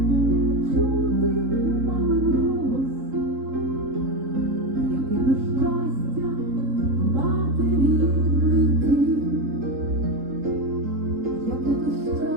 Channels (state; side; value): late; left; 3.8 ms